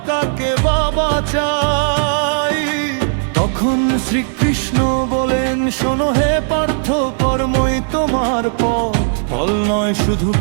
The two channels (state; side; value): silent; left; 59 dB below the other